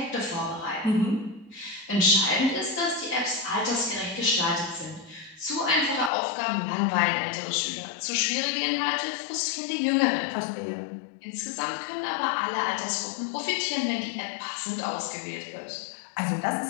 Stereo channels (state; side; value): drops out; right; at 6.1 s